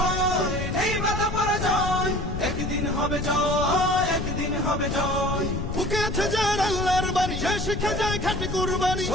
নেই বাধা পরাজয়, একদিন হবে জয়, একদিন হবে জয়। বুকে আছে যার আল্লাহর বাণী, সে শিখে যায় খাঁটি কুরবানি,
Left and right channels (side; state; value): left; noise; rumble, 5 dB below the sound